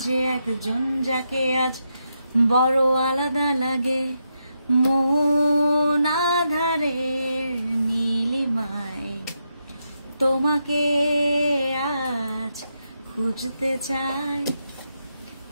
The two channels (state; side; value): inverted; both; correlation -0.83